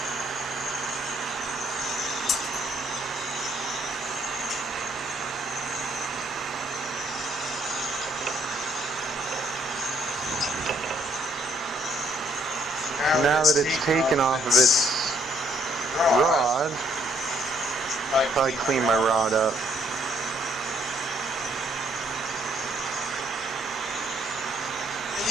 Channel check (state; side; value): normal; both; correlation 0.68